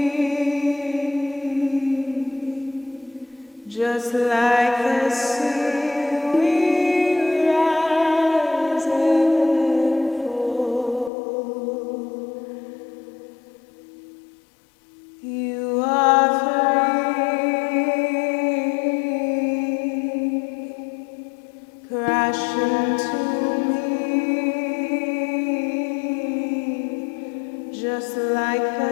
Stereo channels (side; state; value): right; drops out; at 11.1 s